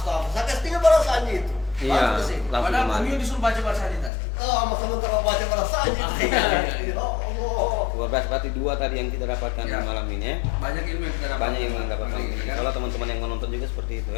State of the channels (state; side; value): drops out; right; at 4.1 s